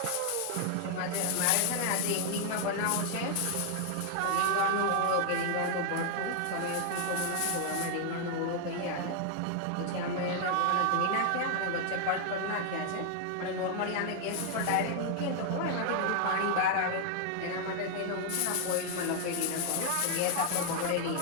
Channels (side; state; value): both; different; correlation 0.00